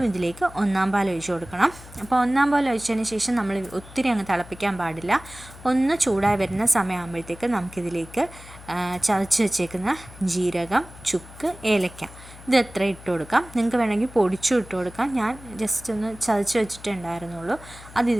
ഇതിലേക്ക് ഒന്നാം പാൽ ഒഴിച്ച് കൊടുക്കണം. അപ്പോൾ ഒന്നാം പാൽ ഒഴിച്ചതിന് ശേഷം നമ്മൾ ഒത്തിരി അങ്ങ് തിളപ്പിക്കാൻ പാടില്ല. ഒന്ന് ചൂടായി വരുന്ന സമയമാകുമ്പോഴത്തേക്ക് നമുക്കിതിലേക്ക് ചതച്ച് വെച്ചേക്കുന്ന ജീരകം, ചുക്ക്, ഏലക്ക ഇത് എത്ര ഇട്ട് കൊടുക്കാം. നിങ്ങൾക്ക് വേണമെങ്കിൽ പൊടിച്ചും ഇട്ട് കൊടുക്കാം. ഞാൻ ജസ്റ്റ് ഒന്ന് ചതച്ച് വെച്ചിട്ടേ ഉണ്ടായിരുന്നുള്ളൂ. അത്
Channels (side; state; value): left; noise; hum, 18 dB below the sound